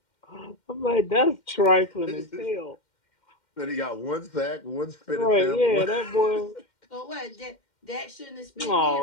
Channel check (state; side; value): late; right; 2.1 ms